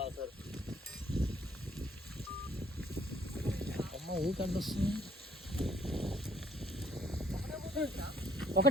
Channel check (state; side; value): normal; both; correlation 0.65